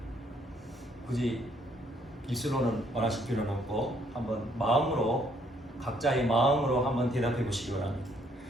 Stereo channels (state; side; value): normal; both; correlation 0.67